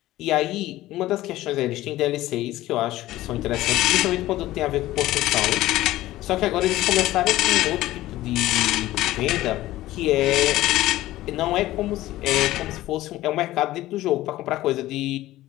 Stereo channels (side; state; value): right; quieter; 16.0 dB